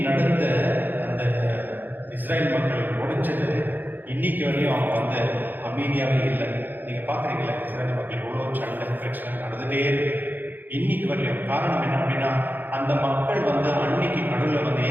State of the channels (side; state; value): left; late; 0.088 ms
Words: நடந்த அந்த இஸ்ரேல் மக்கள் முடிஞ்சது இன்னைக்கு வரையும் அவங்க வந்து அமைதியாகவே இல்லை. நீங்கள் பார்க்குறீங்களா, இஸ்ரேல் மக்கள் இவ்வளோ சண்டை பிரச்சனை நடந்துகிட்டே இருக்கு இன்னைக்கு வரையும். காரணம் என்ன அப்படின்னா அந்த மக்கள் வந்து அன்னைக்கு கடவுளை வந்து